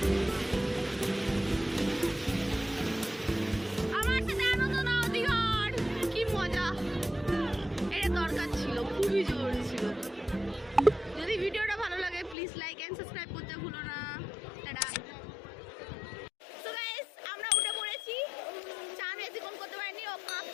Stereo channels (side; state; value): right; drops out; at 12.4 s